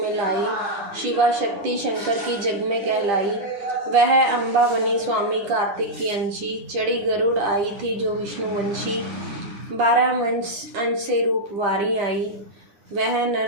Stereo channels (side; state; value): left; late; 10 ms